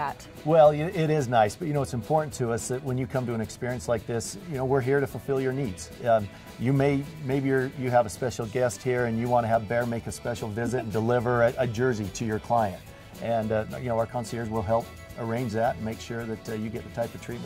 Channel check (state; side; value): identical; both; correlation 1.00